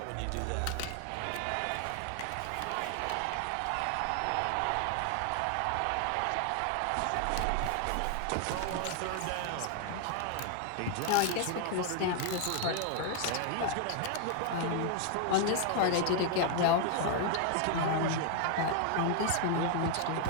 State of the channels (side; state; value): both; different; correlation 0.00